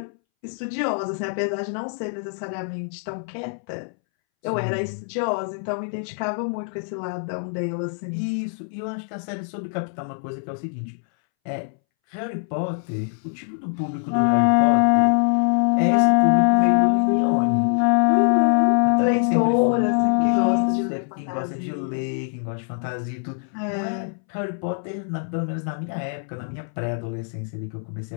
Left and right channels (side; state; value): right; silent; 63 dB below the other